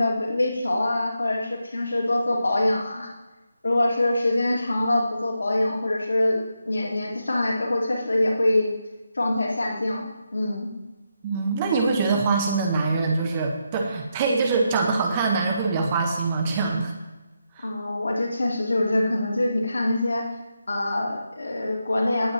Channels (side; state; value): both; inverted; correlation -0.83